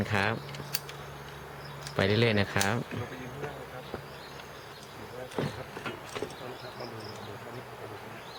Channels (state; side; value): identical; both; correlation 1.00